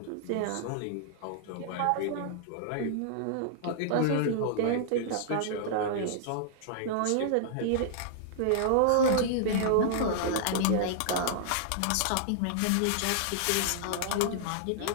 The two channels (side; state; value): both; different; correlation -0.01